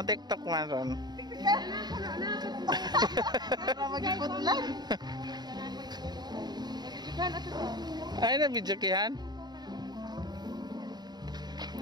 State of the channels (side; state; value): left; late; 0.20 ms